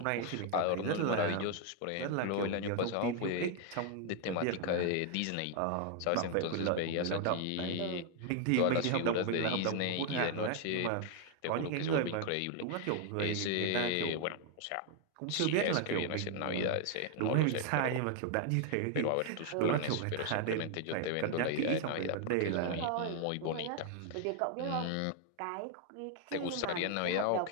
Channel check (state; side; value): different; both; correlation 0.00